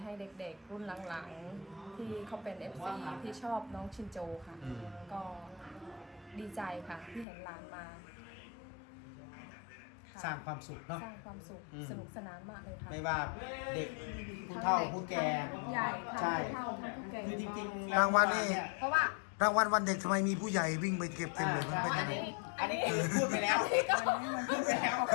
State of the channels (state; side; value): drops out; right; at 7.2 s